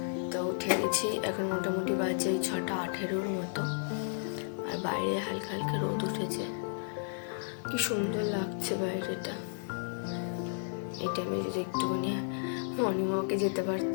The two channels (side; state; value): right; silent; digital silence